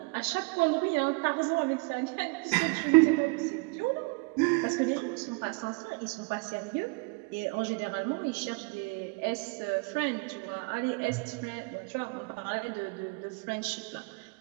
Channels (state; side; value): quieter; left; 30.2 dB